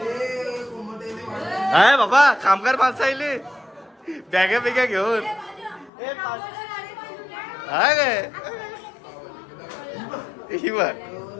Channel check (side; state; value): right; drops out; at 5.9 s